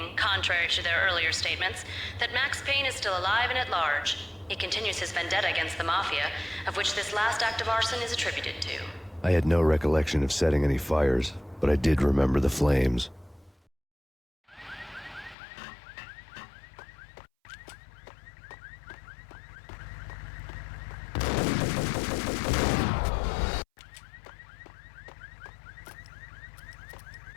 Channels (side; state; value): right; drops out; at 15.4 s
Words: contrary to their earlier statements, that Max Payne is still alive and at large. He continues his vendetta against the Mafia, of which this last act of arson is attributed to. I had no recollection of setting any fires, but I did remember the flames.